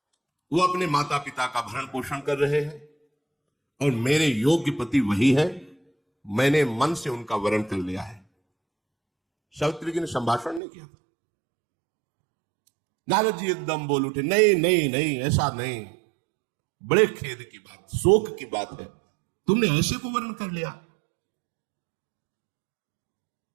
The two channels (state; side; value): drops out; left; at 10.6 s